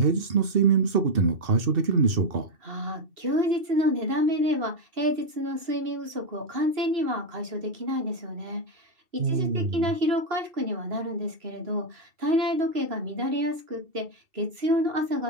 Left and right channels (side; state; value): left; late; 2.7 ms